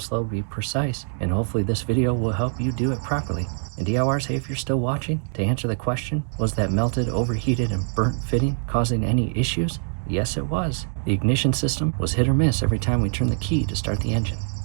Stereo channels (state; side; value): silent; left; digital silence